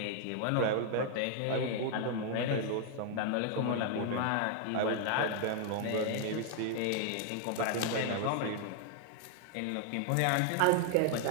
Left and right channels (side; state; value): both; different; correlation 0.00